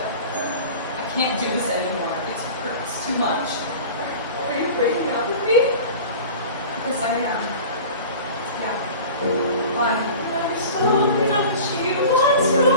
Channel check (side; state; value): both; inverted; correlation -0.38